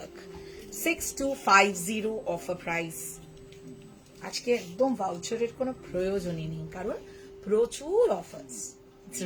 6250 offer price. আজকে একদম ভাউচারের কোনো প্রয়োজনই নেই, কারণ প্রচুর অফার্স. It's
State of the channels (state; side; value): identical; both; correlation 1.00